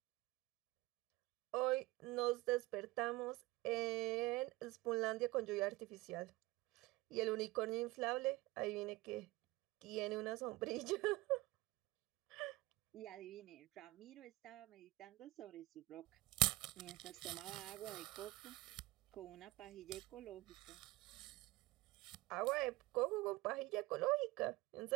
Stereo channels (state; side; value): quieter; left; 19.8 dB